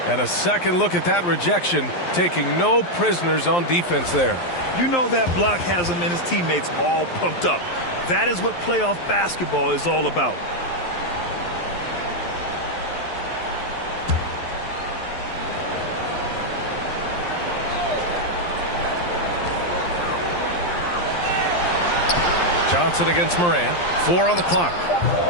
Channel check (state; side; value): late; right; 11 ms